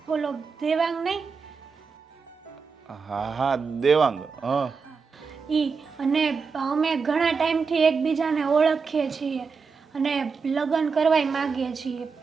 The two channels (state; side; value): quieter; left; 5.2 dB